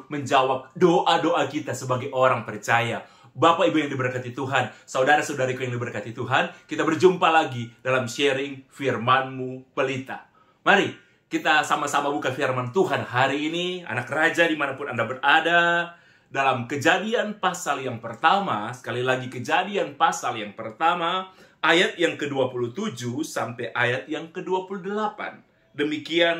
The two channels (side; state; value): both; identical; correlation 1.00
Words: menjawab doa-doa kita sebagai orang percaya. Bapak Ibu yang diberkati Tuhan, saudara-saudariku yang diberkati Tuhan, kita berjumpa lagi dalam sharing firman-Mu pelita. Mari kita sama-sama buka firman Tuhan hari ini, anak raja dimanapun Anda berada, dalam Kejadian pasal yang pertama, sekali lagi Kejadian pasal yang pertama, ayat yang ke-27 sampai ayat yang ke-28.